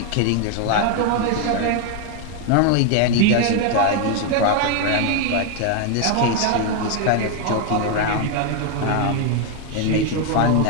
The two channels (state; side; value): different; both; correlation 0.01